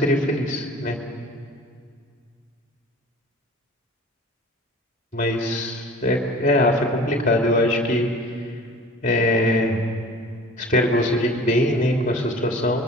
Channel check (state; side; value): normal; both; correlation 0.43